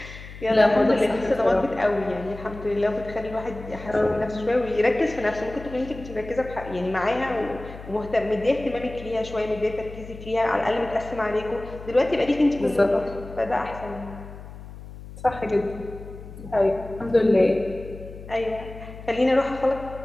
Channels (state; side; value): noise; left; hum, 14 dB below the sound